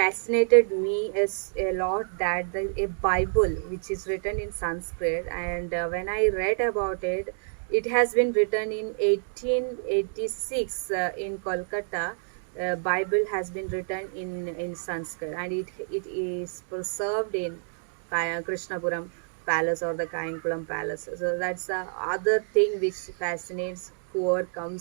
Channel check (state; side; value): silent; left; digital silence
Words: me is a lot, that a Bible which is written in Sanskrit, and when I read about it, it has been written in 1886 in Kolkata. Bible has been written in Sanskrit, and it is preserved in Krishnapuram Palace or the Kayankulam Palace. So that's the other thing which fascinates whoever